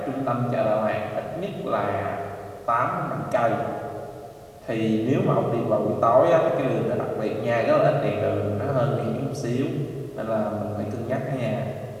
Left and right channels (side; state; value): both; identical; correlation 1.00